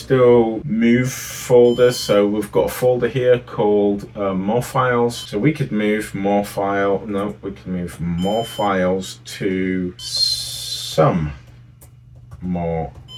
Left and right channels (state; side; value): identical; both; correlation 1.00